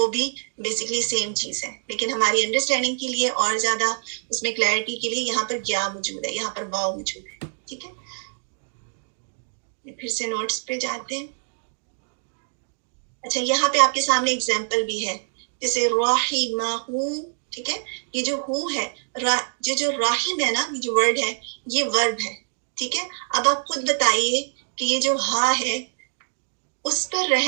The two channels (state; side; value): silent; left; digital silence